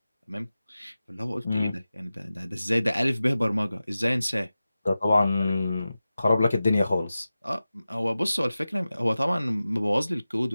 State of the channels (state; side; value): inverted; both; correlation -0.95